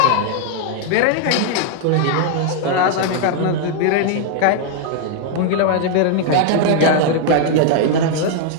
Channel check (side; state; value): both; different; correlation 0.00